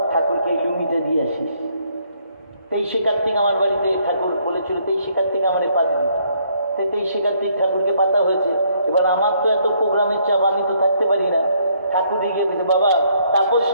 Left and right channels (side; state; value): both; inverted; correlation -0.69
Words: ঠাকুরকে এই লুঙ্গিটা দিয়ে আসিস। 23শে কার্তিক আমার বাড়িতে ঠাকুর বলেছিল 23শে কার্তিক আমার পাতবি, তাই 23শে কার্তিক ঠাকুরকে পাতা হয়েছে। এবার আমার তো এত প্রোগ্রামের চাপ, আমি তো থাকতে পারি না। ঠাকুর গিয়ে গেছে, বাবা তাপস